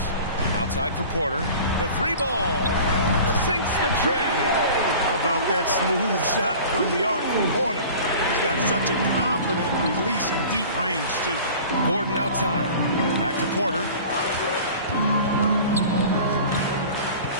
outside for Porter. The 3-ball, sinks the tray. How about that smooth shot from the arc from Porter? He's got such a confident release in deep range, too. Gordon outside. Back to Porter.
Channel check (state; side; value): inverted; both; correlation -0.41